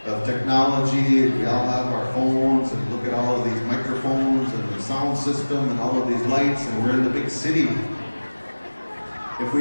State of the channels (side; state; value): both; inverted; correlation -1.00